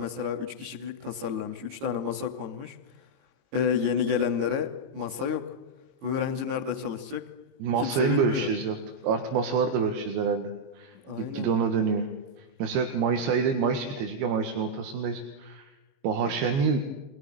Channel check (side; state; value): left; late; 22 ms